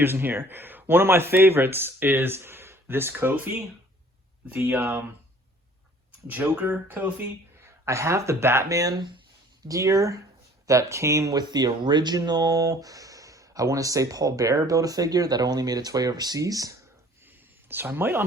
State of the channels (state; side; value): normal; both; correlation 0.53